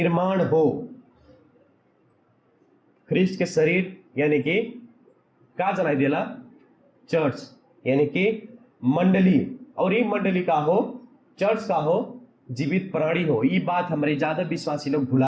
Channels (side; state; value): both; identical; correlation 1.00